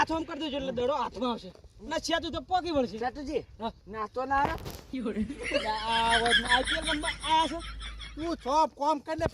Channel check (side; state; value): both; identical; correlation 1.00